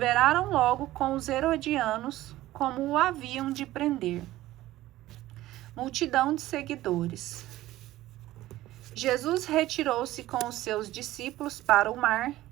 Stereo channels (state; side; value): quieter; left; 15.8 dB